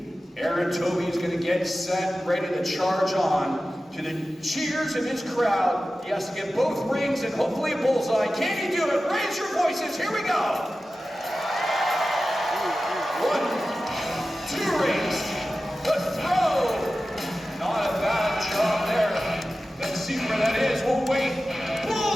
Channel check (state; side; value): normal; both; correlation 0.94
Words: Aaron Toby is going to get set, ready to charge on. To the cheers of his crowd, he has to get both rings and hopefully a bullseye. Can he do it? Raise your voices. Here we go. 1, 2 rings. The throw. Not a bad job there. Let's see